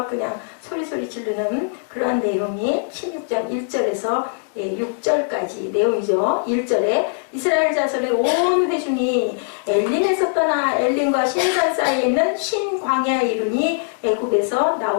그냥 소리소리 지르는 그러한 내용이 16장 1절에서 6절까지 내용이죠. 1절에 이스라엘 자손의 온 회중이 엘림에서 떠나 엘림과 신산 사이에 있는 신광야에 이르니 애굽에서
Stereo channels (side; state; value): right; silent; 62 dB below the other